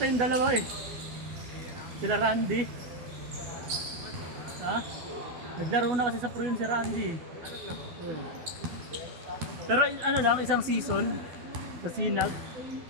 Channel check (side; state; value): left; late; 12 ms